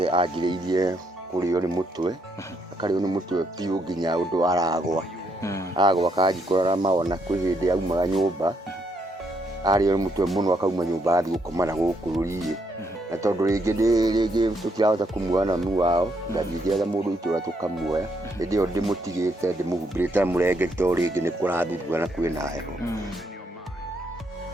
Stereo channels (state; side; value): normal; both; correlation 0.75